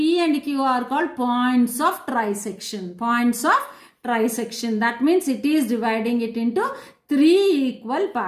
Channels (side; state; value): both; identical; correlation 1.00